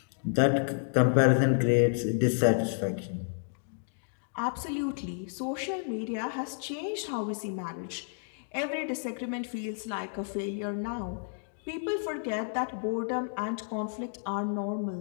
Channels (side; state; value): right; silent; digital silence